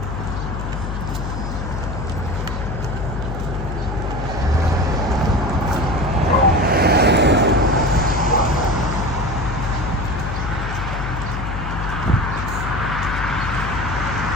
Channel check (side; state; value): left; noise; hum, 4 dB below the sound